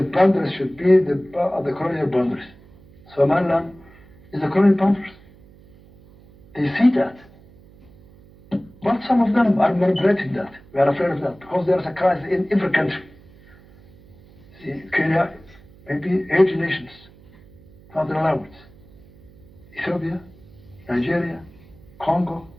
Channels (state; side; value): noise; right; hum, 25 dB below the sound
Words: boundaries should be the colonial boundaries. Somaliland is the colonial boundaries. They see that. But some of them are manipulating that. We are afraid of that because there is a crisis in every country. See, Kenya, maybe 8 nations, not allowed. Ethiopia, Nigeria, Congo,